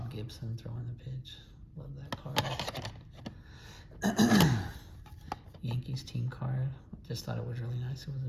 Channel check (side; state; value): both; identical; correlation 1.00